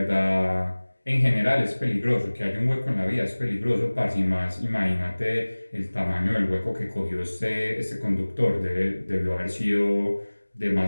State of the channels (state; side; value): inverted; both; correlation -1.00